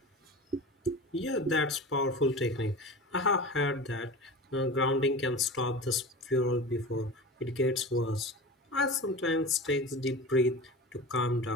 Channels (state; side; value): normal; both; correlation 0.32